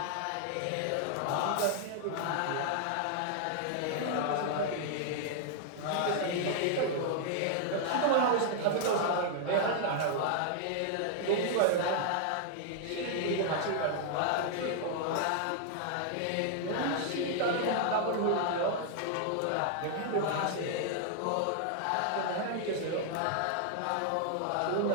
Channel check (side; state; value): both; different; correlation -0.01